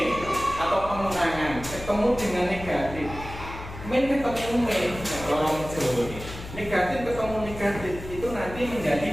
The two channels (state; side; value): noise; left; hum, 12 dB below the sound